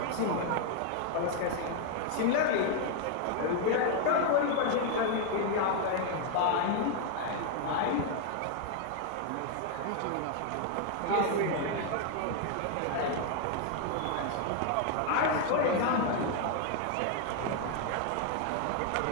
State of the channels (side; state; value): both; different; correlation 0.00